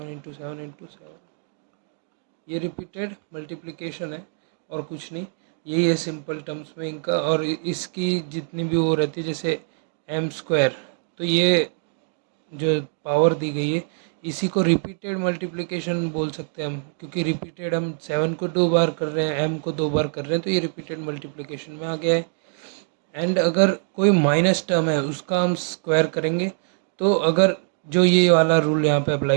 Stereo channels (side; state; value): left; silent; 63 dB below the other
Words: × 7 × 7, ये रिपीटेड मल्टीप्लिकेशन है और कुछ नहीं। यही है सिंपल टर्म्स में इनका। और इसकी जितनी भी वो रहती है, जैसे m², तो ये जो पावर दी गई है इसी को रिपीटेड मल्टीप्लिकेशन बोल सकते हैं हम, क्योंकि रिपीटेड हम 7 को 2 बार कर रहे हैं, m को 2 बार कर रहे हैं, तो ये रिपीटेड मल्टीप्लिकेशन में आ गया है। एंड अगर कोई माइनस टर्म है उसका हम स्क्वायर करेंगे, तो अगर जो ये वाला रूल यहाँ पे